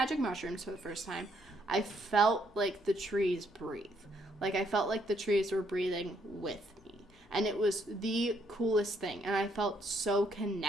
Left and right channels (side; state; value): both; normal; correlation 0.71